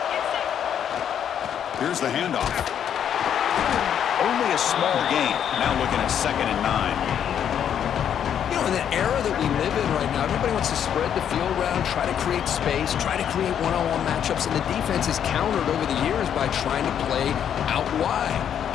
Here's the handoff. a small gain. Now looking at 2nd and 9. You know, in the era that we live in right now, everybody wants to spread the field around, try to create space, try to create one-on-one matchups, and the defense is countered over the years by trying to play out wide.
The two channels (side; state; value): right; quieter; 9.0 dB